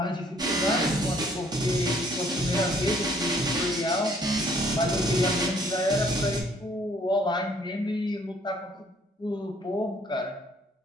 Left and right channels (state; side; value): normal; both; correlation 0.62